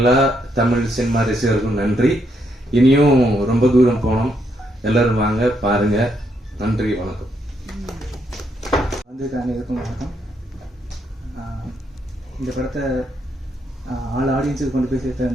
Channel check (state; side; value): normal; both; correlation 0.76